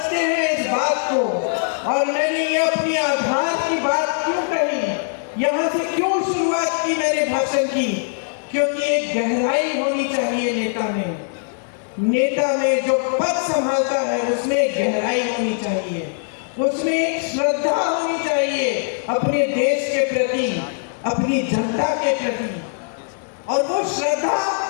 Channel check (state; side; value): silent; right; digital silence